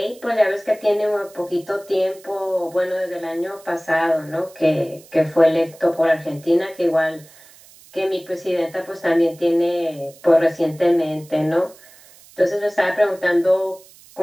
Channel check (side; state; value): right; noise; hiss, 24 dB below the sound